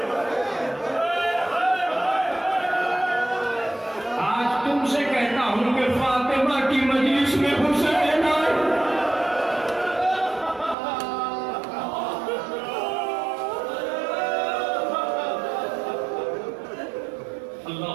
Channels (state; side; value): drops out; left; at 10.8 s